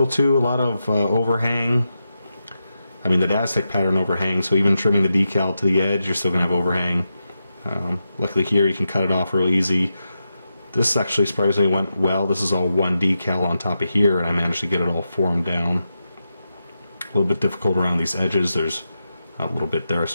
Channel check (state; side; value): inverted; both; correlation -0.88